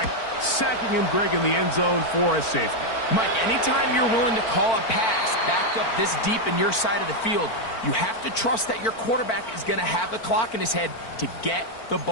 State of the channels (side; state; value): right; late; 4.4 ms